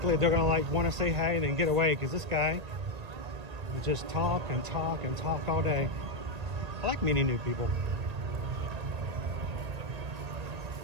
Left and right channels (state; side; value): late; left; 1.8 ms